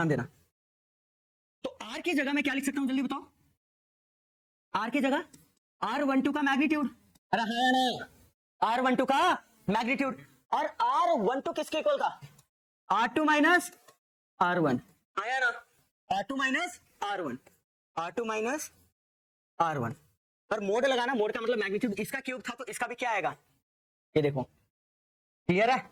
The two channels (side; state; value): both; identical; correlation 1.00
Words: देना। तो R की जगह मैं क्या लिख सकता हूँ, जल्दी बताओ, R की जगह R12 का मैग्नीट्यूड, अरे हाँ ना, R12 का मैग्नीट्यूड, और R12 किसके इक्वल था, R2 माइनस R1, आया ना, R2 minus R1, R2 minus R1, और मोड लगाना, मोड का मतलब मैग्नीट्यूड, इसका क्यूब था तो इसका भी क्या आएगा, ये देखो, क्लियर है,